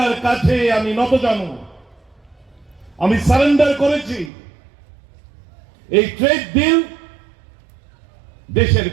কাছে আমি নতজানু, আমি সারেন্ডার করেছি। এই ট্রেড ডিল দেশের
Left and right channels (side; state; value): left; drops out; at 4.3 s